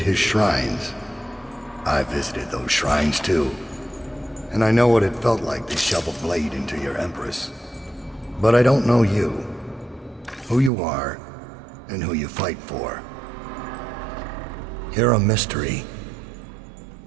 shrines. I visited those shrines too. And I know what it felt like to shove a blade into your Empress. But I don't know you. Who you are, and who you fight for. You're a mystery,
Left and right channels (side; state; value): left; drops out; at 10.7 s